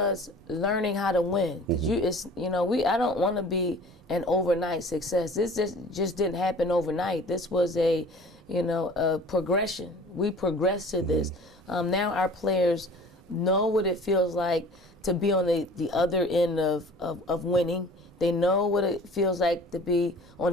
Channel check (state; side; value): normal; both; correlation 0.46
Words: learning how to win. Mm-hmm. I don't want to be an overnight success. This just didn't happen overnight. This was a progression. We progressed to this. Mm-hmm. Now our players know what it feels like to be on the other end of winning. They know what it feels like to be on